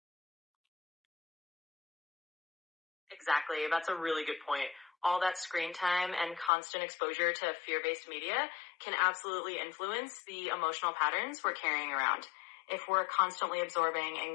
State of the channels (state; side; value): drops out; right; at 6.5 s